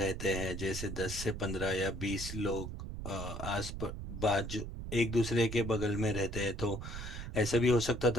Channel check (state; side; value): noise; right; rumble, 7 dB below the sound